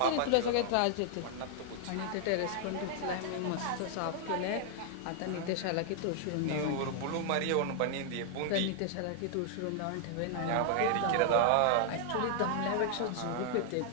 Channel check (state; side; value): different; both; correlation 0.00